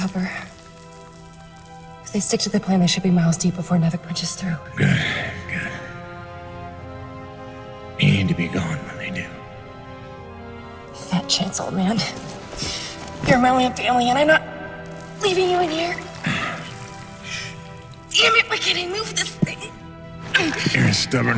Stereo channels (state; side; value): identical; both; correlation 1.00